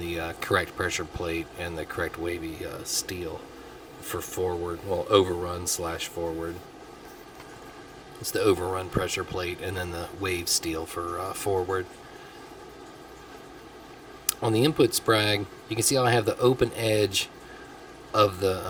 correct pressure plate and the correct wavy steel for forward. Well, overrun slash forward. It's the overrun pressure plate, and then the wave steel for forward. On the input Sprag, you can see how I have the open edge of the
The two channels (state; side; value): identical; both; correlation 1.00